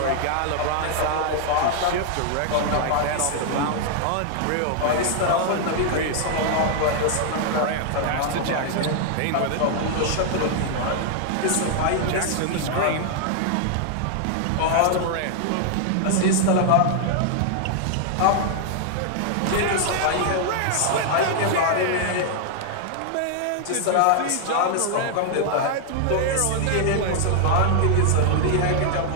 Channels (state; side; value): different; both; correlation 0.00